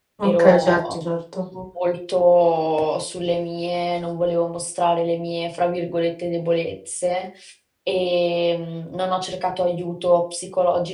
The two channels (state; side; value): identical; both; correlation 1.00